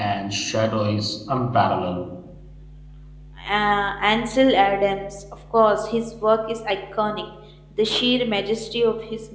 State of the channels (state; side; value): identical; both; correlation 1.00